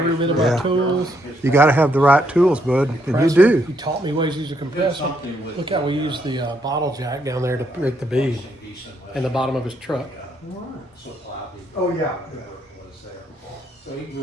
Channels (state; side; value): normal; both; correlation 0.74